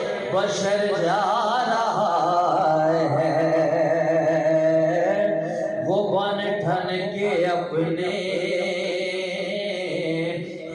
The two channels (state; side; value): identical; both; correlation 1.00